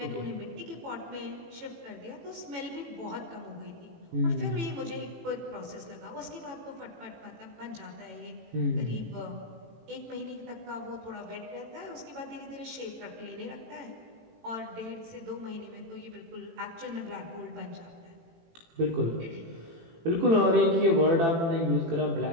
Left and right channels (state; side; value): late; left; 18 ms